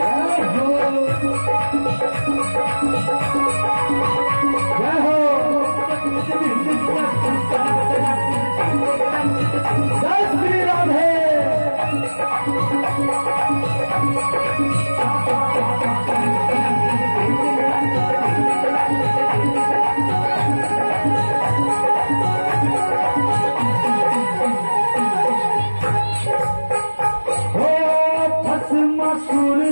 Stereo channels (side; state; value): both; inverted; correlation -1.00